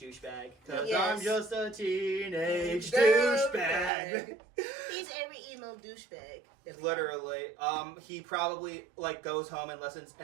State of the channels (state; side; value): drops out; left; at 3.9 s